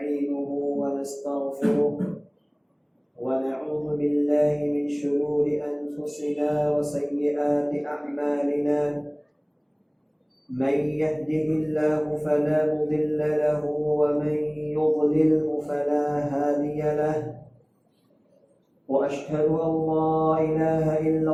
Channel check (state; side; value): identical; both; correlation 1.00